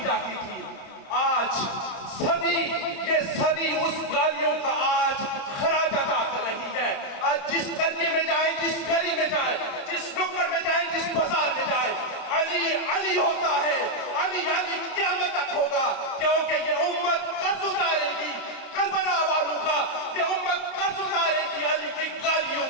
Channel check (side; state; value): right; late; 30 ms